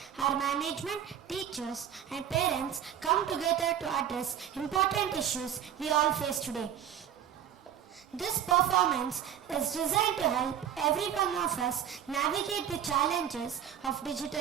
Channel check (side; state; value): left; quieter; 9.6 dB